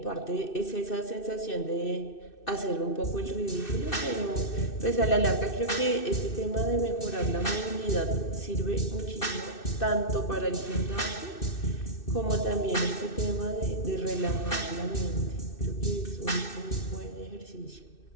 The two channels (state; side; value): late; right; 2.6 ms